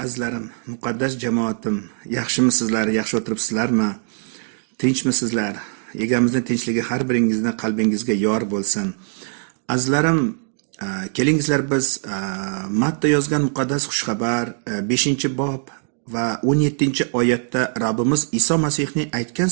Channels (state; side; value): silent; left; 65 dB below the other